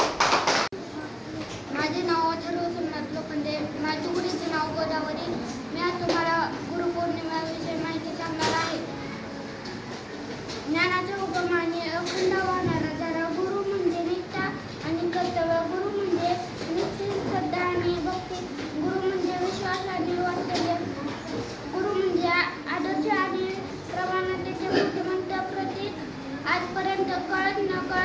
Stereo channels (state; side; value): identical; both; correlation 1.00